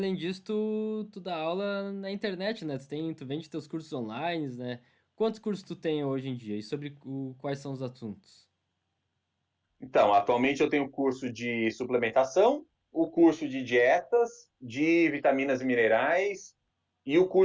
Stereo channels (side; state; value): both; identical; correlation 1.00